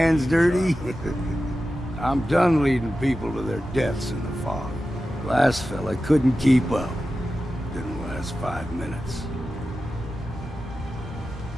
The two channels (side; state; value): both; normal; correlation 0.93